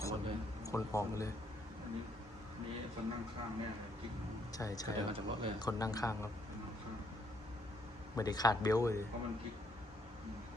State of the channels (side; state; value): both; normal; correlation 0.70